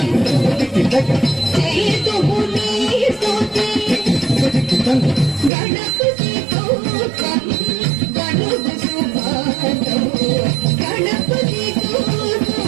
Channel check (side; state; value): left; drops out; at 5.5 s